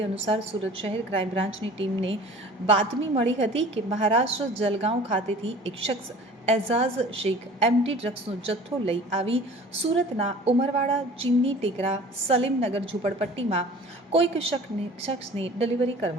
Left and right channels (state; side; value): normal; both; correlation 0.45